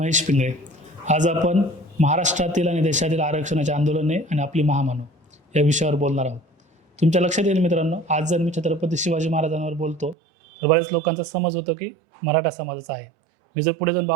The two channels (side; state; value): left; drops out; at 10.2 s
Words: पिंगळे. आज आपण महाराष्ट्रातील आणि देशातील आरक्षणाचे आंदोलने आणि आपली महामानव या विषयावर बोलणार आहोत. तुमच्या लक्षात येईल मित्रांनो, आज जर मी छत्रपती शिवाजी महाराजांवर बोलतो तर बऱ्याच लोकांचा समज होतो की मराठा समाजाचा आहे. मी जर पुढे जाऊन